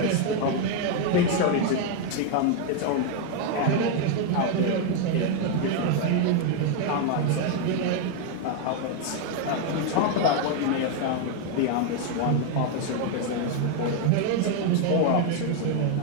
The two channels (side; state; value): both; different; correlation 0.01